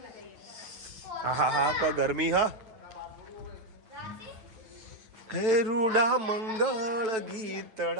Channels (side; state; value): left; late; 9.2 ms